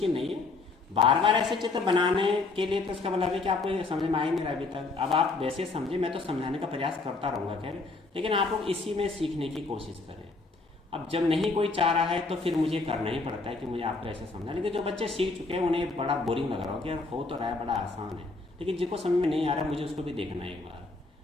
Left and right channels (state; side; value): quieter; right; 3.6 dB